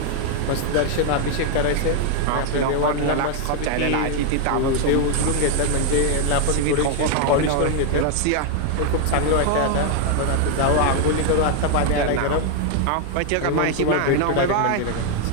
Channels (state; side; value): different; both; correlation 0.00